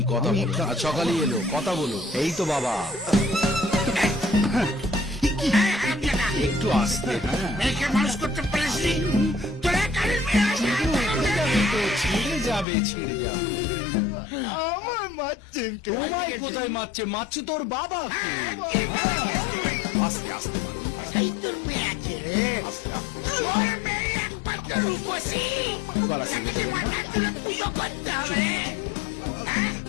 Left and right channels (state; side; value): drops out; right; at 12.7 s